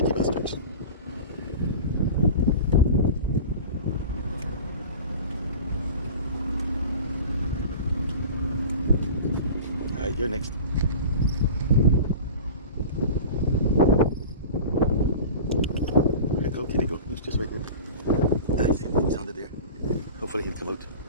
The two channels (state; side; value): inverted; both; correlation -0.35